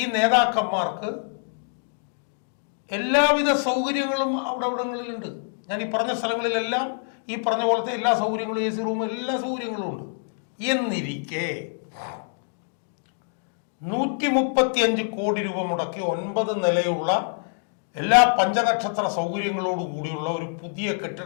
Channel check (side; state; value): right; silent; digital silence